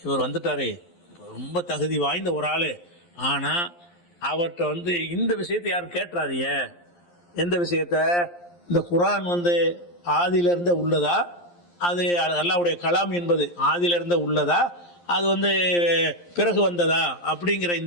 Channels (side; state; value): right; late; 11 ms